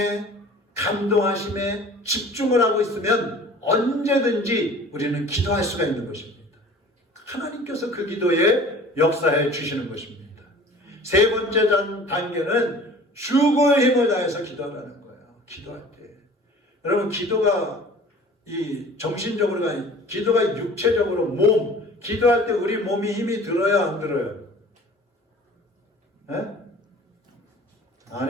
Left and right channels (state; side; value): normal; both; correlation 0.46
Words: 감동하심에 집중을 하고 있으면 언제든지 우리는 기도할 수가 있는 것입니다. 하나님께서 그 기도에 역사해 주시는 것입니다. 세 번째 단계는 죽을 힘을 다해서 기도하라는 거예요. 기도할 때. 여러분, 기도가 이 정신적으로가 아니라 기도가 육체적으로 몸, 기도할 때 우리 몸이 힘이 들어요, 안 들어요? 네? 안